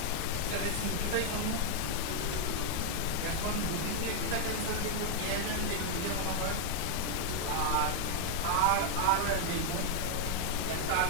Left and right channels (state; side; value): different; both; correlation 0.00